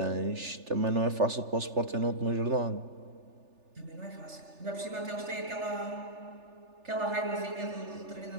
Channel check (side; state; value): left; late; 3.4 ms